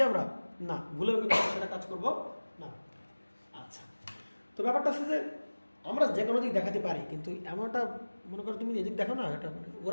আমরা না, ভুলেও কিন্তু আমরা সেটা কাজ করব না। আচ্ছা, তো ব্যাপারটা হচ্ছে যে আমরা যে কোনো দিক দেখাতে পারি, কিন্তু এমনটা মনে করো তুমি এদিক দেখো না, এটা মানে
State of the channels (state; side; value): inverted; both; correlation -1.00